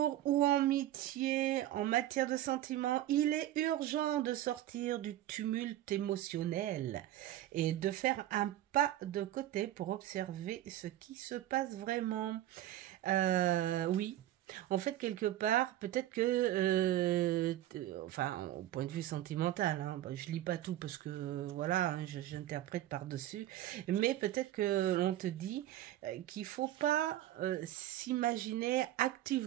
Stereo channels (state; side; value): quieter; left; 13.5 dB